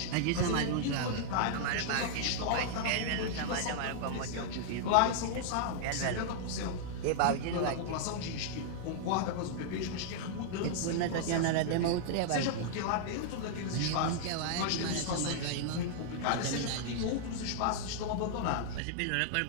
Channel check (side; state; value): both; different; correlation -0.01